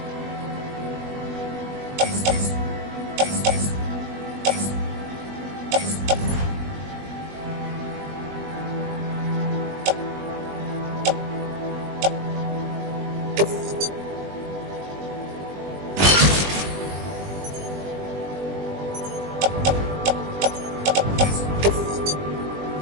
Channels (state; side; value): late; left; 20 ms